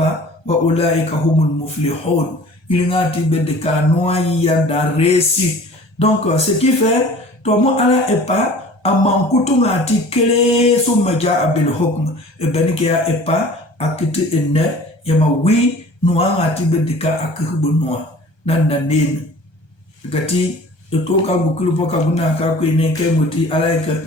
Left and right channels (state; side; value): late; right; 1.3 ms